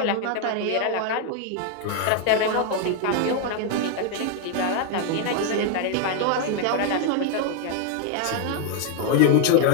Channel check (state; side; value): different; both; correlation 0.00